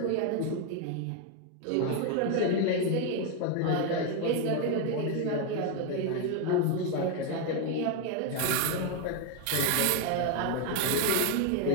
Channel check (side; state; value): both; different; correlation 0.01